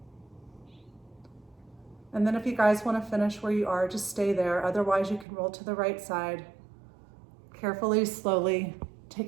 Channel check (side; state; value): left; drops out; at 5.2 s